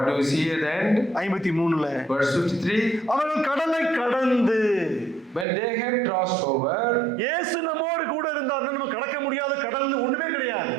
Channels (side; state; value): left; drops out; at 5.5 s